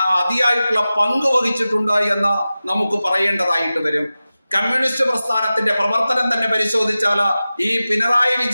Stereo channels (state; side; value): inverted; both; correlation -0.95